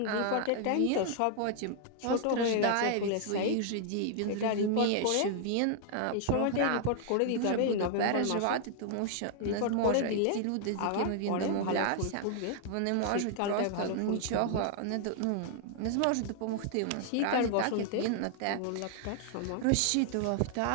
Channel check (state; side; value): different; both; correlation 0.00